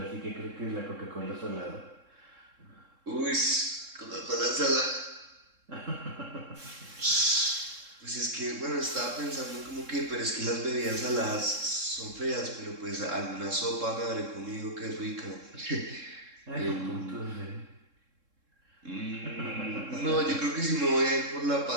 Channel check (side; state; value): left; late; 3.7 ms